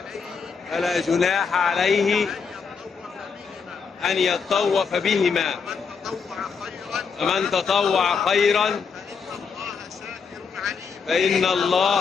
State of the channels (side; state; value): right; quieter; 5.7 dB